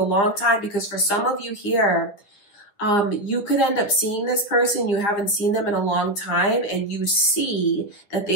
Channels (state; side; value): late; right; 9.9 ms